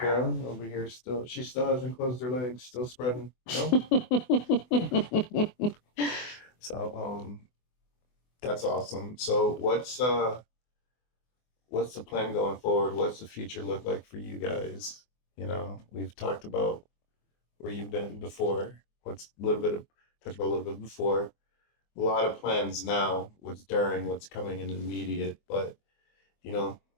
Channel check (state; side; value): late; right; 24 ms